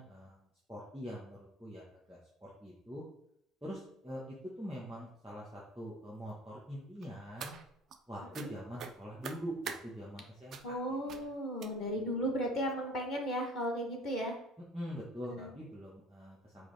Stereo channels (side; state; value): both; normal; correlation 0.47